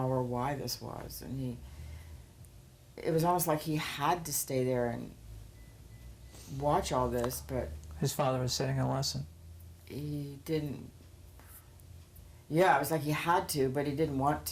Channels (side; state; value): both; identical; correlation 1.00